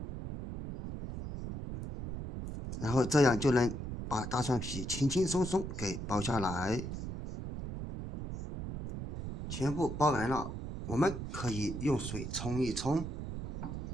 然後这樣就能把大蒜皮輕輕鬆鬆給剥下來。全部剥完了，我們可以用水沖一沖，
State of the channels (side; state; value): right; noise; rumble, 6 dB below the sound